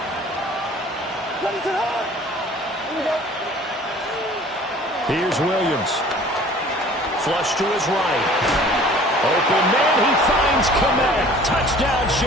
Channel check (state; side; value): normal; both; correlation 0.49